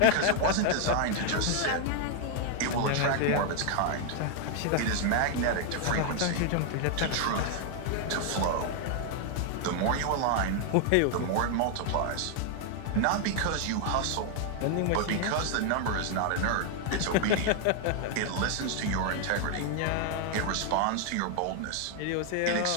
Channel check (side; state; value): both; different; correlation 0.00